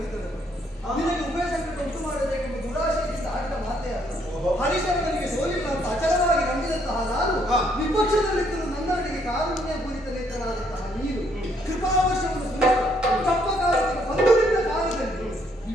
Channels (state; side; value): normal; both; correlation 0.69